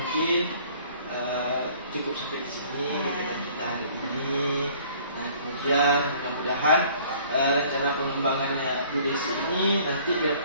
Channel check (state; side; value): inverted; both; correlation -0.54